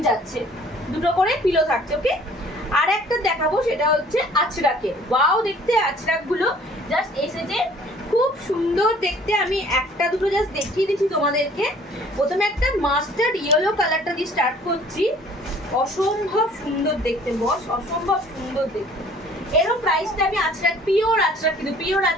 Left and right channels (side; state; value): both; normal; correlation 0.54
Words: যাচ্ছে, দুটো করে পিলো থাকছে। ওকে, আর একটা দেখাবো, সেটা হচ্ছে আঁচড়াকে। ওয়াও দেখতে আঁচড়াকগুলো জাস্ট এসেছে, খুব সুন্দর দেখতে। আমি একটা দুটো জাস্ট দেখিয়ে দিচ্ছি তোমাদেরকে। প্রথমে একটা মাস্টার্ড ইয়েলো কালারটা দিয়ে স্টার্ট করছি, অসম্ভব সুন্দর দেখতে বস, অসম্ভব সুন্দর দেখতে। এরও প্রাইসটা আমি আঁচড়াক, পিওর আঁচড়াক, কিন্তু পিওর